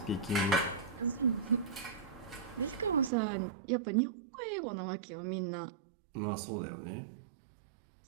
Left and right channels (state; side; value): drops out; left; at 3.1 s